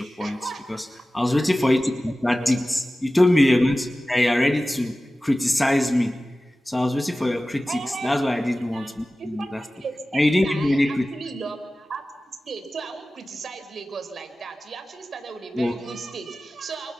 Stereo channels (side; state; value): both; normal; correlation 0.96